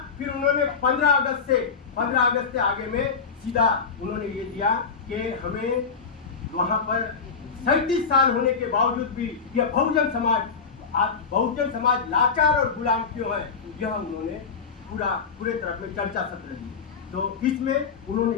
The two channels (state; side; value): quieter; right; 5.5 dB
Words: फिर उन्होंने 15 अगस्त से आगे में सीधा उन्होंने ये दिया कि हमें वहाँ पर 37 साल होने के बावजूद भी यह बहुजन समाज लाचार और गुलाम क्यों है, यह उन्होंने पूरे तरह में चर्चा सत्र दी। तो इसमें